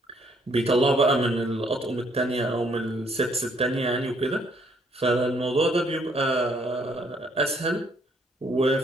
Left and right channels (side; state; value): both; normal; correlation 0.67